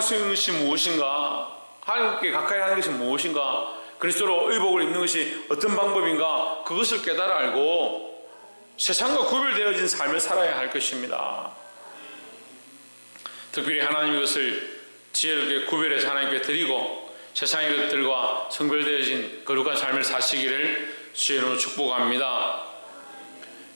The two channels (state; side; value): inverted; both; correlation -1.00